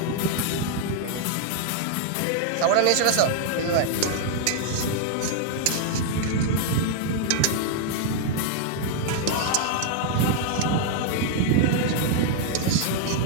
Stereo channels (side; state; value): both; different; correlation 0.00